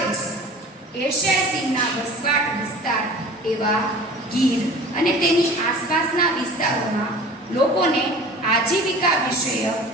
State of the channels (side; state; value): both; normal; correlation 0.41